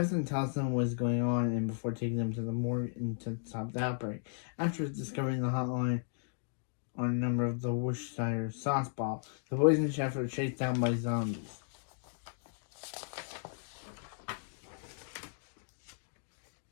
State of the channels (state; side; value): silent; right; digital silence